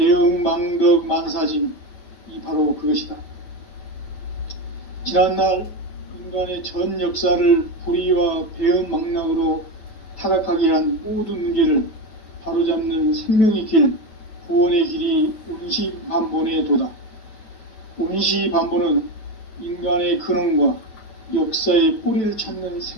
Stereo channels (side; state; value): right; late; 9.1 ms